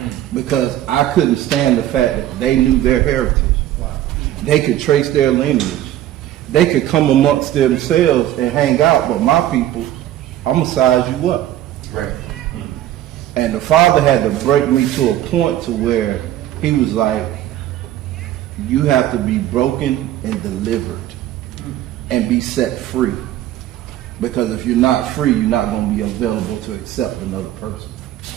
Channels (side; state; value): left; quieter; 12.9 dB